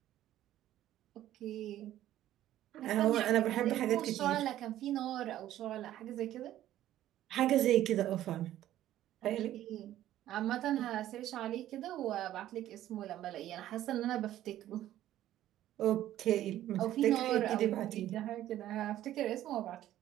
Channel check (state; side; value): quieter; left; 13.1 dB